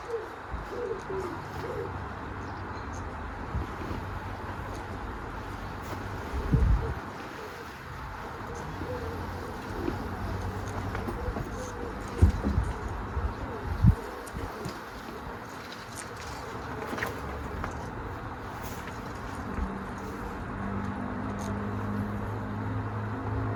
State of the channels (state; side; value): identical; both; correlation 1.00